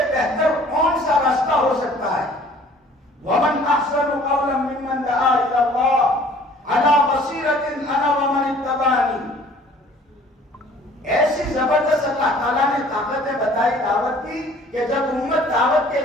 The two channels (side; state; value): both; normal; correlation 0.53